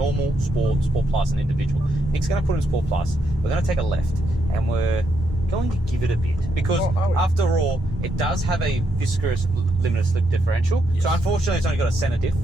Sport, Sport Plus, and individual. Nick's going to put in Sport Plus. We're going to take a left and we're going to give it a bit, because after all, it does have a viscous limited slip differential. Yes. So unfortunately, it's only got a center diff.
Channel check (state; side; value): normal; both; correlation 0.78